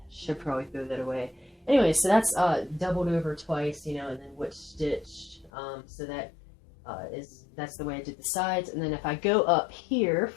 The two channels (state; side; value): drops out; right; at 5.5 s